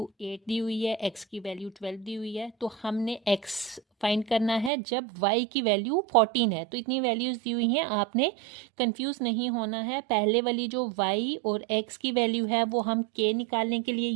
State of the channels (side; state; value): left; drops out; at 4.7 s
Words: 8 दी हुई है, x की वैल्यू 12 दी हुई है, तो हमने x फाइंड करना है जब y की वैल्यू 14 है। तो इतनी वैल्यूज़ दी हुई हैं, आपने कंफ्यूज नहीं होना है। पहले वाली जो y और x की वैल्यू है वो हम k निकालने के लिए